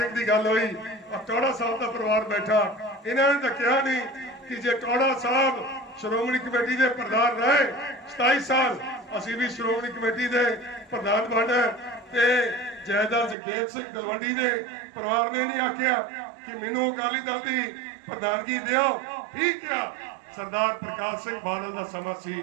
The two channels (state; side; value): drops out; left; at 13.4 s